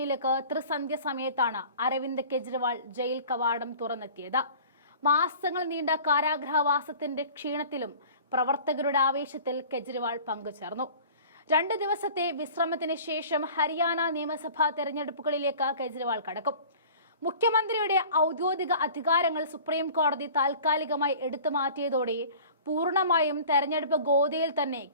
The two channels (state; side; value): inverted; both; correlation -0.44